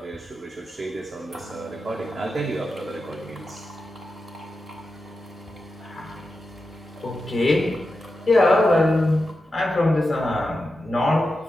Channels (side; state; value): both; normal; correlation 0.90